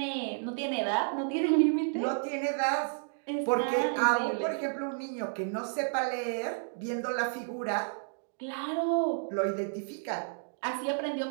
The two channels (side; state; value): left; silent; digital silence